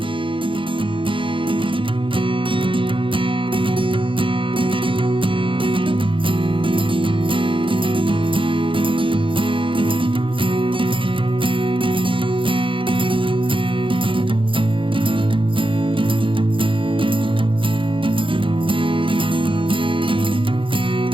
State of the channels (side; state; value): left; late; 0.25 ms